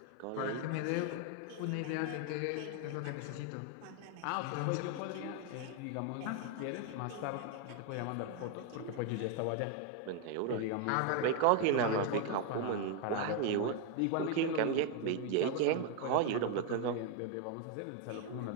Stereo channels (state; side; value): different; both; correlation 0.01